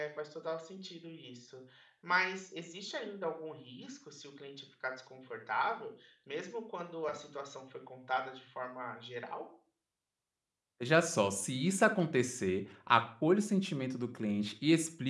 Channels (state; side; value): identical; both; correlation 1.00